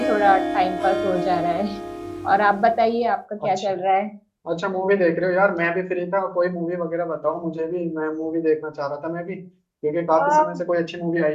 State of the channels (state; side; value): identical; both; correlation 1.00